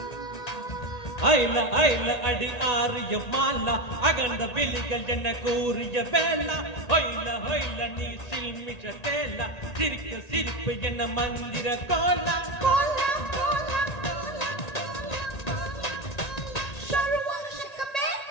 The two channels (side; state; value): right; late; 1.8 ms